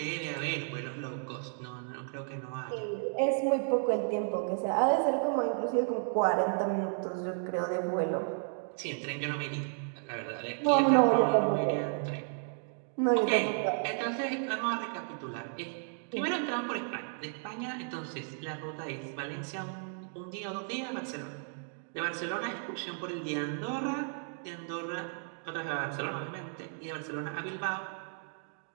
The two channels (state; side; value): silent; left; 56 dB below the other